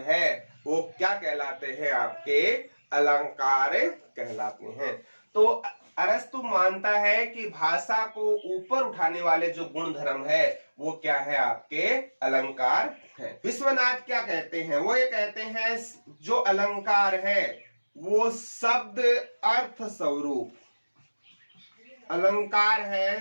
है वो क्या कहलाते हैं, आपके अलंकार कहलाते हैं। तो अरस्तु मानता है कि भाषा को ऊपर उठाने वाले जो गुण धर्म है वो क्या है, आपके अलंकार है। विश्वनाथ क्या कहते हैं, वो ये कहते हैं जो अलंकार है वो शब्द अर्थ स्वरूप, अलंकार है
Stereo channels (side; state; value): both; inverted; correlation -1.00